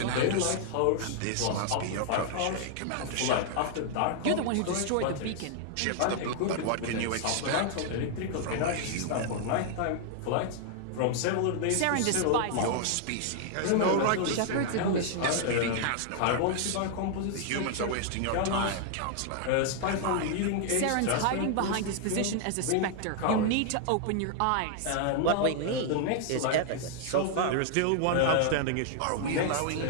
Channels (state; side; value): different; both; correlation 0.00